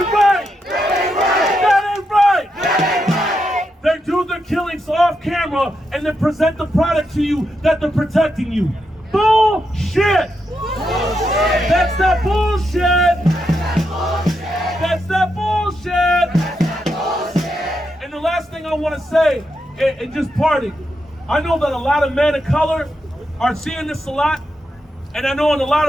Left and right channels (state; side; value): normal; both; correlation 0.84